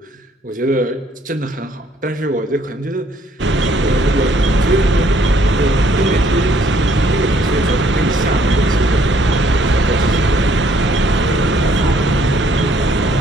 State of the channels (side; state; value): both; normal; correlation 0.65